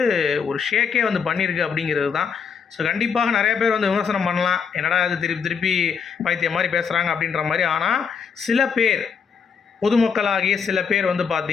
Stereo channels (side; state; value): right; quieter; 6.4 dB